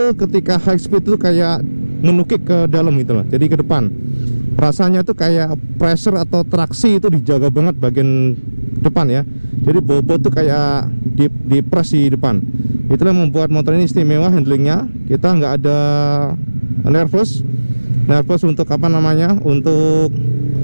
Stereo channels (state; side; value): inverted; both; correlation -1.00